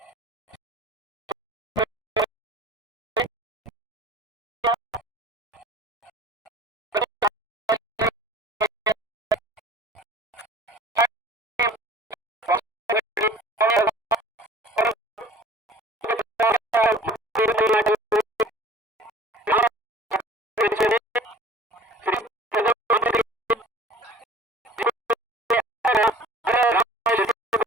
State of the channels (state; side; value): normal; both; correlation 0.46